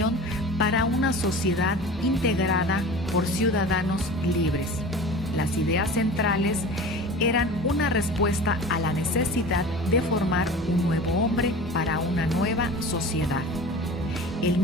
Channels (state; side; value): normal; both; correlation 0.37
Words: para una sociedad integrada por ciudadanos libres. Las ideas centrales eran una respuesta a la necesidad de formar un nuevo hombre para una nueva sociedad.